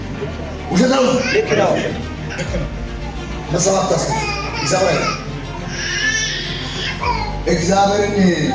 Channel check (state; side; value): identical; both; correlation 1.00